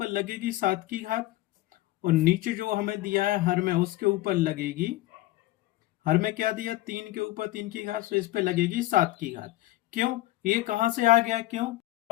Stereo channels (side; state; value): right; quieter; 17.1 dB